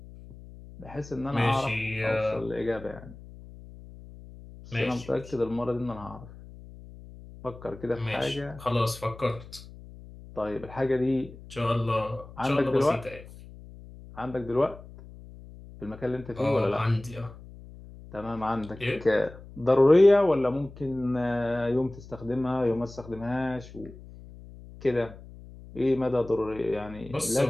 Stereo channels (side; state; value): left; noise; hum, 17 dB below the sound